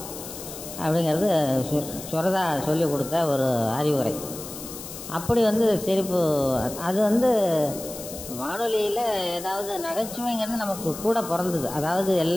அப்படிங்கிறது சுரதா சொல்லி கொடுத்த ஒரு அறிவுரை. அப்படி வந்து சிரிப்பு, அது வந்து வானொலியில் ஏதாவது நகைச்சுவைங்கிறது நமக்கு கூட பிறந்தது. அதாவது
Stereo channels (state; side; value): noise; left; hiss, 11 dB below the sound